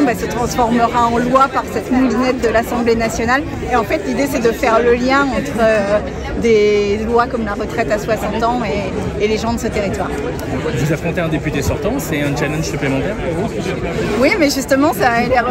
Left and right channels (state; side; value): identical; both; correlation 1.00